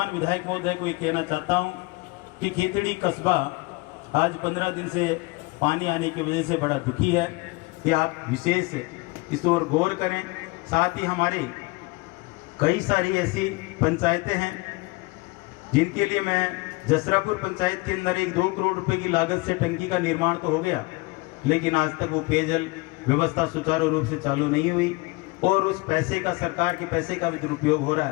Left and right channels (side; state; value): right; quieter; 25.0 dB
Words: विधायक महोदय को ये कहना चाहता हूँ कि खेतड़ी कस्बा आज 15 दिन से पानी आने की वजह से बड़ा दुखी है, कि आप विशेष इस ओर गौर करें। साथ ही हमारे कई सारी ऐसी पंचायतें हैं जिनके लिए मैं जसरापुर पंचायत के अंदर 1-2 करोड़ रुपए की लागत से टंकी का निर्माण तो हो गया, लेकिन आज तक वो पेयजल व्यवस्था सुचारू रूप से चालू नहीं हुई और उस पैसे का, सरकार के पैसे का भी दुरुपयोग हो रहा